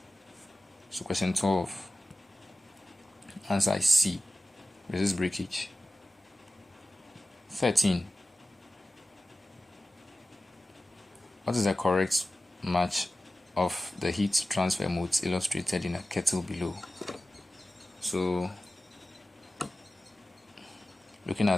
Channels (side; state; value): both; normal; correlation 0.95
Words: So question 12. Answer is C. Resist breakage. 13. What is the correct match of the heat transfer modes illustrated in a kettle below? So looking